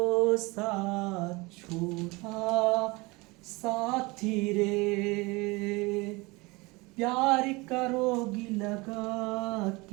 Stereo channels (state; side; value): quieter; left; 24.5 dB